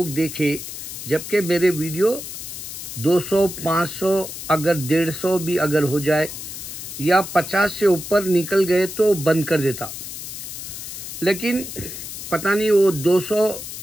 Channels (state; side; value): noise; left; hiss, 9 dB below the sound